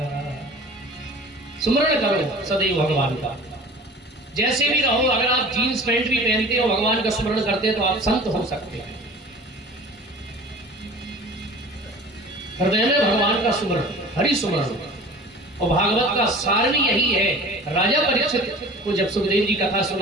सुमरण करो सदैव भगवान का, जैसे भी रहो। अगर आप जीन्स पैंट भी पहनते हो, भगवान का स्मरण करते हो, तो आप संत हो सकते हैं। हृदय में भगवान का सुमरण, हरि सुमरण। और भागवत का सार भी यही है। राजा परीक्षित को जब सुखदेव जी कथा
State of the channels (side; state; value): both; normal; correlation 0.42